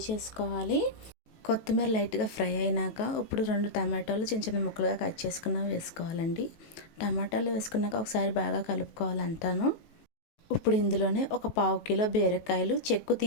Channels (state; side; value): late; right; 19 ms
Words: చేసుకోవాలి. కొత్తిమీర లైట్గా ఫ్రై అయినాక ఇప్పుడు 2 టమాటాలు చిన్న చిన్న ముక్కలుగా కట్ చేసుకున్నవి వేసుకోవాలండి. టమాటాలు వేసుకున్నాక ఒకసారి బాగా కలుపుకోవాలంటాను. ఇప్పుడు ఇందులోనే ఒక 1/2 కిలో బీరకాయలు చెక్కు